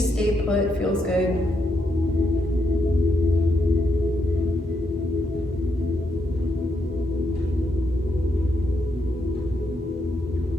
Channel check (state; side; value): normal; both; correlation 0.80